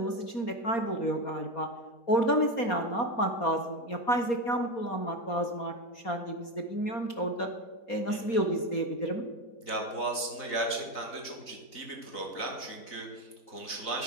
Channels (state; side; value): late; right; 4.0 ms